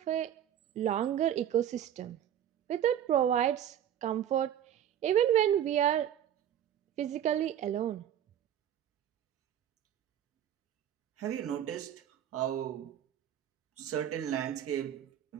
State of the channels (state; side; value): quieter; left; 10.3 dB